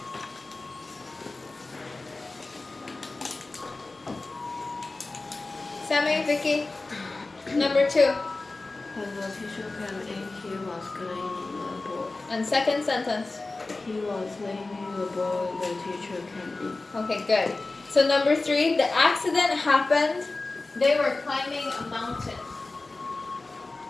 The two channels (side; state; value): right; quieter; 3.4 dB